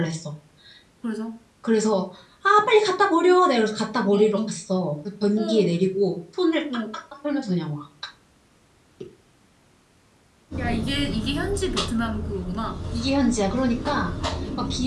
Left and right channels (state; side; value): identical; both; correlation 1.00